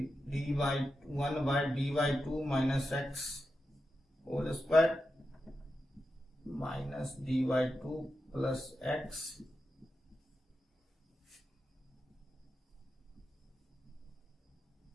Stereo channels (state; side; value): normal; both; correlation 0.89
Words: d/2 minus X whole square minus d/2 plus X.